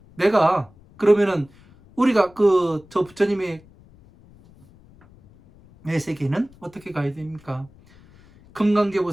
내가 그러면은 우리가 저 부처님의 세계는 어떻게 가야 됩니까?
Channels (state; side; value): noise; left; rumble, 26 dB below the sound